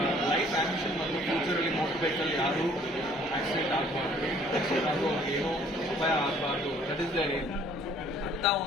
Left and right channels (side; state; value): both; normal; correlation 0.58